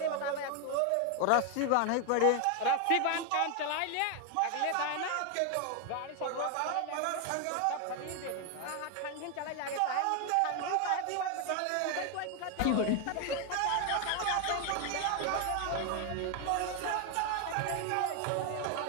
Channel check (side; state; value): both; different; correlation 0.01